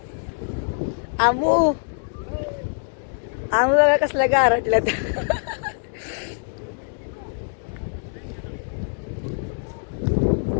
आमू आमू बघा कसल्या गारटल्यात.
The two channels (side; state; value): right; silent; 63 dB below the other